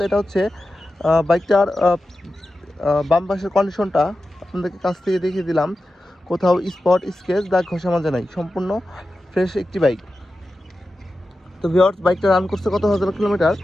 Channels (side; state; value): both; normal; correlation 0.92